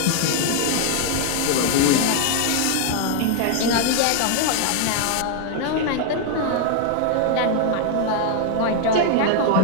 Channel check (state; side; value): different; both; correlation 0.00